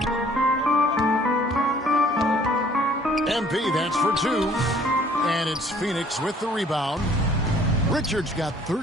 MP, that's for 2. And it's Phoenix with the rebound. Richards got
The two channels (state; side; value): normal; both; correlation 0.57